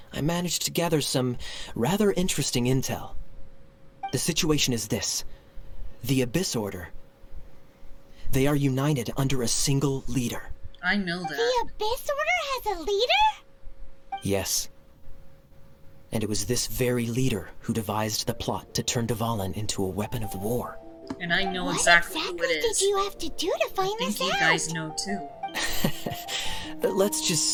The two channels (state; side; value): identical; both; correlation 1.00